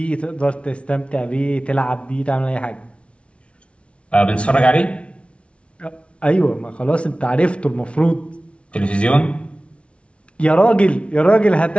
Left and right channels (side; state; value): right; late; 0.060 ms